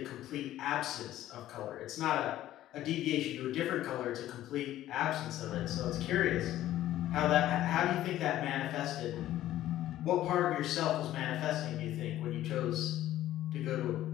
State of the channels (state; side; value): quieter; right; 13.6 dB